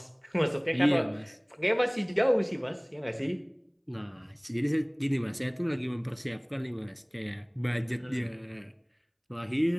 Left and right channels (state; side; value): identical; both; correlation 1.00